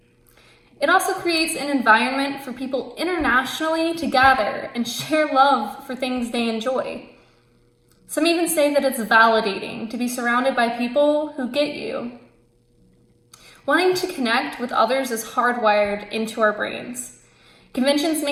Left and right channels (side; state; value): both; identical; correlation 1.00